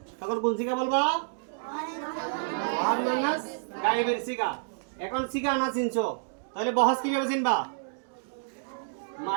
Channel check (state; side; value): silent; left; digital silence